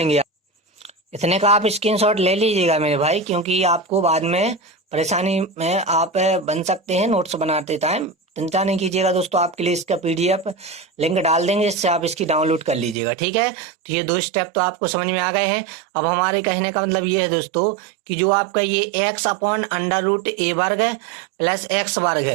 इतने का आप स्क्रीनशॉट ले लीजिएगा मेरे भाई, क्योंकि आपको बाद में परेशानी में आप बन सकते हैं नोट्स बनाते टाइम। चिंता नहीं कीजिएगा दोस्तों, आपके लिए इसका PDF लिंक डाल देंगे, इससे आप इसकी डाउनलोड कर लीजिएगा। ठीक है, तो ये 2 स्टेप तो आपको समझ में आ गए हैं। अब हमारे कहने का मतलब ये है दोस्तों कि जो आपका ये एक्स अपॉन √, ए वर्ग प्लस एक्स वर्ग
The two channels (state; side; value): drops out; left; at 13.0 s